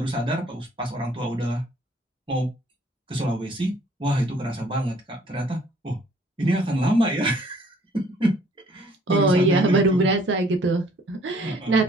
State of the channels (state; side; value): normal; both; correlation 0.59